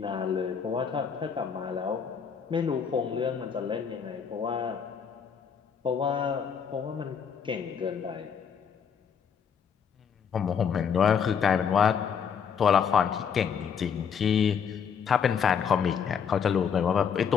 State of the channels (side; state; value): right; quieter; 7.0 dB